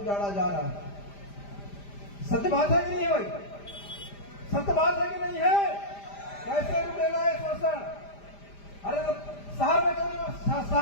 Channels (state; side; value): late; right; 5.0 ms